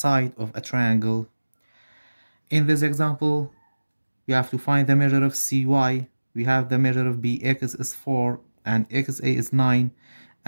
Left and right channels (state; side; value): inverted; both; correlation -1.00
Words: of a triangle. In this example, we have to find the measure of CY. We have the measure of BX is 4 and XA is 9